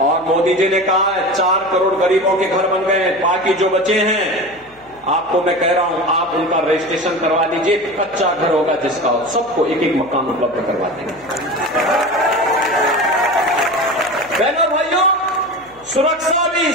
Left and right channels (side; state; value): left; noise; hum, 29 dB below the sound